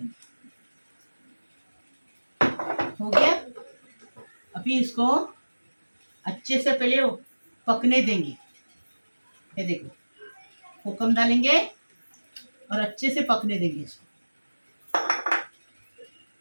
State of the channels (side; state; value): both; inverted; correlation -1.00